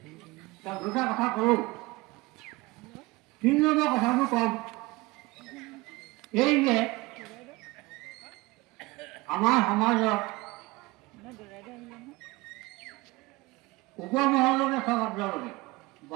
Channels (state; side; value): quieter; left; 22.1 dB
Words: দুটা কথা কৰোঁ। 3 নম্বৰ কথাটো কম, এই যে আমাৰ সমাজত উপমহলতে চব আপোনালোকে